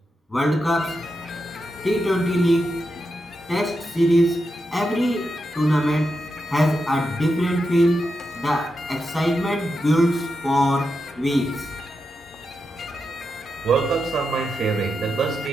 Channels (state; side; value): normal; both; correlation 0.87